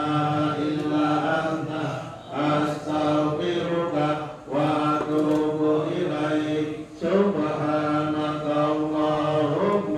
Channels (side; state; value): both; identical; correlation 1.00